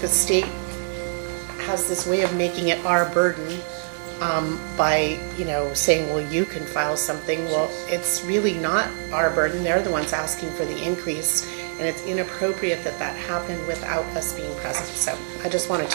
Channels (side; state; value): left; silent; 62 dB below the other